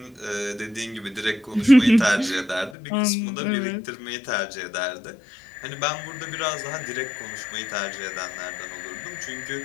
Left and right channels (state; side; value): drops out; right; at 2.8 s